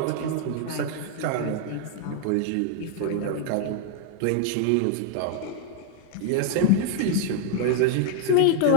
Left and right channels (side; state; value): both; different; correlation 0.00